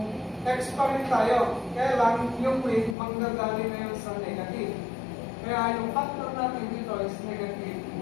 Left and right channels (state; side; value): drops out; right; at 3.0 s